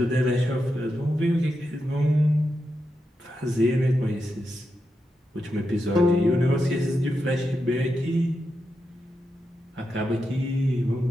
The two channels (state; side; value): normal; both; correlation 0.87